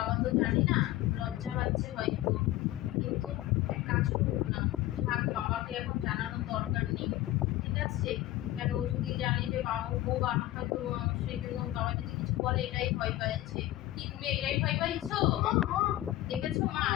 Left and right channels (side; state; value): right; quieter; 15.5 dB